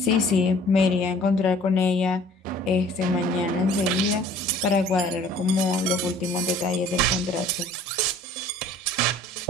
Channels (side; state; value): both; normal; correlation 0.52